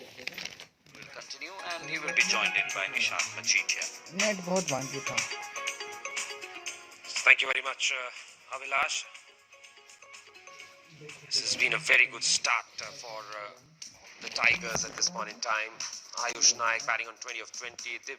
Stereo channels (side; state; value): both; identical; correlation 1.00